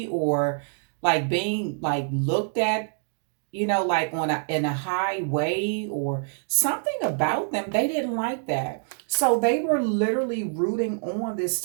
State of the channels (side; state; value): left; silent; digital silence